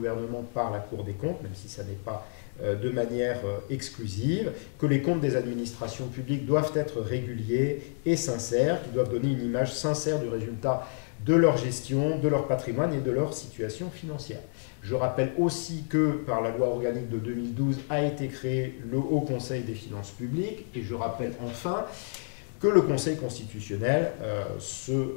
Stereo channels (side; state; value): right; silent; digital silence